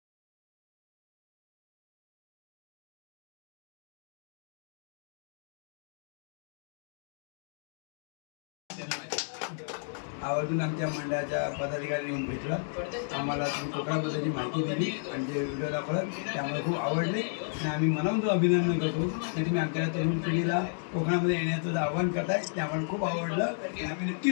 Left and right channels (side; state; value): right; silent; digital silence